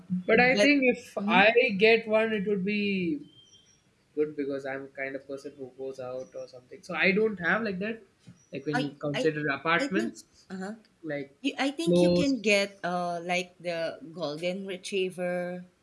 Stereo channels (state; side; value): identical; both; correlation 1.00